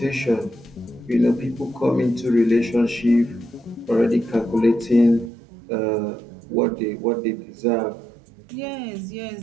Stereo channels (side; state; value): left; drops out; at 5.3 s